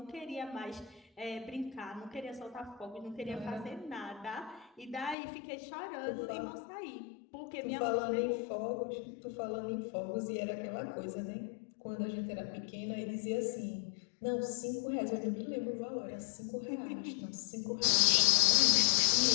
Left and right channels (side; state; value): right; drops out; at 5.2 s